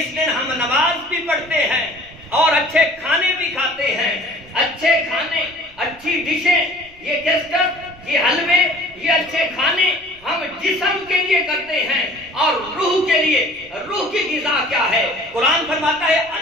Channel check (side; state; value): right; noise; rumble, 26 dB below the sound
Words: دن ہم نماز بھی پڑھتے ہیں اور اچھے کھانے بھی کھاتے ہیں۔ اچھے کھانے، اچھی ڈشیں، یہ کیسٹر، یہ حلوے، یہ اچھے کھانے ہم جسم کے لیے کرتے ہیں اور روح کے لیے۔ روح کی غذا کیا ہے؟ قرآن فرماتا ہے